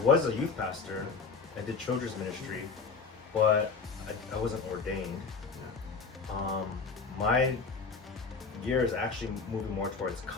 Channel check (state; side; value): quieter; right; 4.8 dB